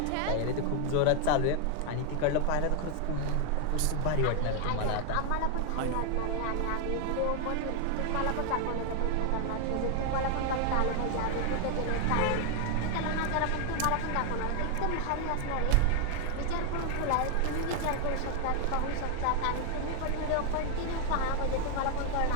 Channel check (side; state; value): both; different; correlation 0.01